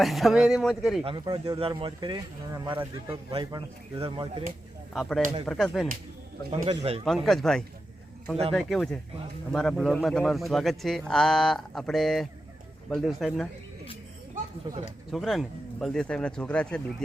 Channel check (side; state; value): both; normal; correlation 0.90